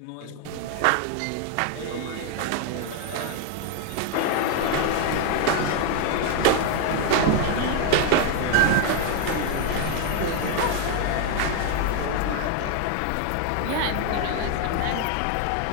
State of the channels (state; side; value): different; both; correlation 0.01